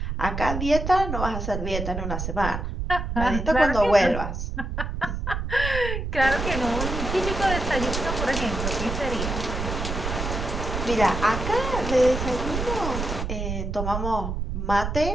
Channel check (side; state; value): right; noise; rumble, 3 dB below the sound